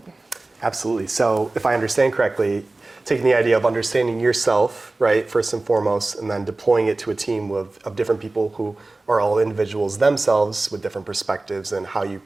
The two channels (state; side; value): quieter; left; 3.1 dB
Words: Absolutely. So if I understand correctly, taking the idea of understanding yourself, right, first and foremost, and then deploying it to a team of different people who are all individuals themselves with different perspectives, and how you